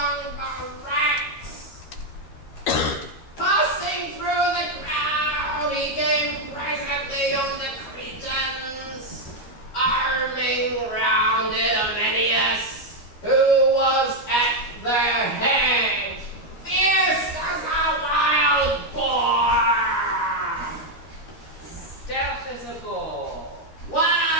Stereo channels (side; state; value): right; late; 13 ms